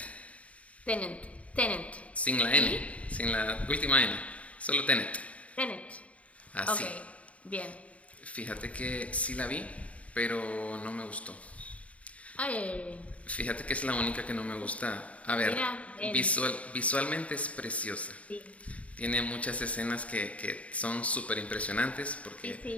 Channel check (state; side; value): late; right; 0.066 ms